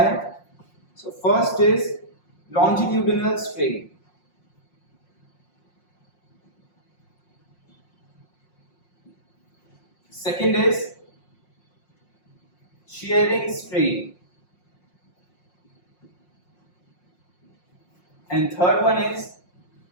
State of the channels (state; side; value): late; right; 5.6 ms